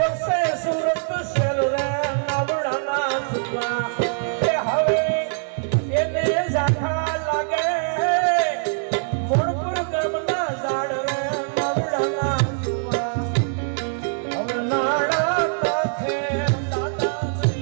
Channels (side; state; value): left; silent; digital silence